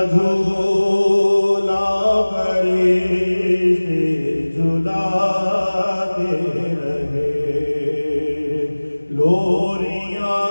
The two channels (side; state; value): both; inverted; correlation -1.00